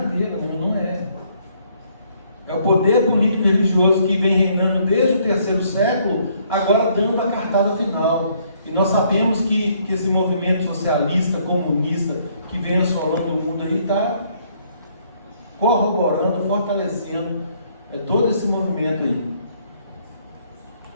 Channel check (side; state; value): both; inverted; correlation -0.67